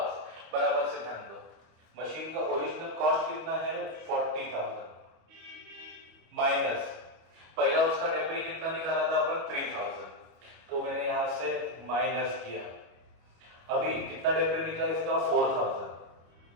बराबर से ध्यान दो, मशीन का ओरिजिनल कॉस्ट कितना है, 40,000 माइनस पहला उसका डेप्री कितना निकाला था अपन, 3,000। तो मैंने यहां से माइनस किया। अभी कितना डेप्री निकला इसका, 4,000,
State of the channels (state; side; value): late; left; 25 ms